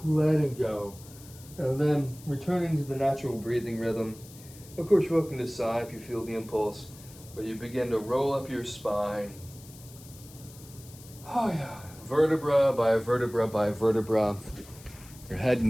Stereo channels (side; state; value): left; noise; hiss, 20 dB below the sound